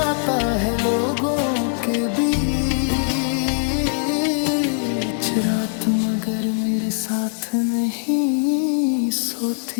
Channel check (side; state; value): right; silent; 55 dB below the other